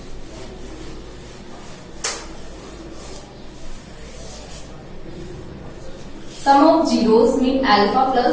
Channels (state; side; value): identical; both; correlation 1.00